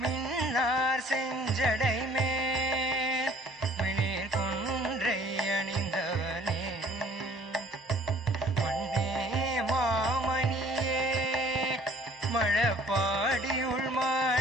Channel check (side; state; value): both; normal; correlation 0.55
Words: மின்னார் செஞ்சடைமே பாடியுள்